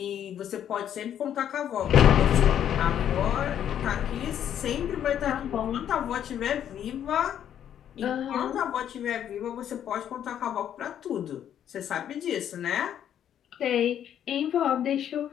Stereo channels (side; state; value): right; quieter; 9.9 dB